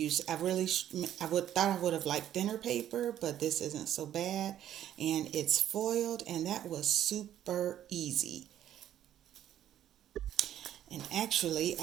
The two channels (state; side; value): quieter; left; 11.3 dB